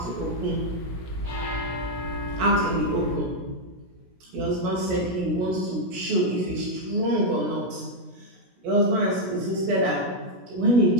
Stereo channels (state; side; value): late; left; 16 ms